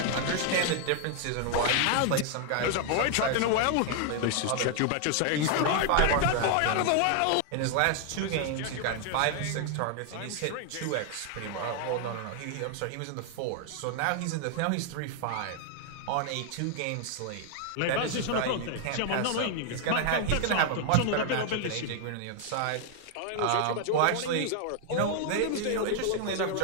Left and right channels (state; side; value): different; both; correlation 0.00